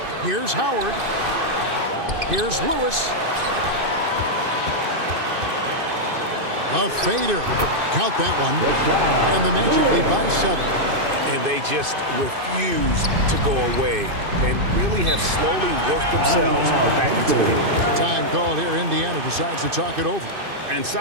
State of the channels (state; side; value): late; left; 2.5 ms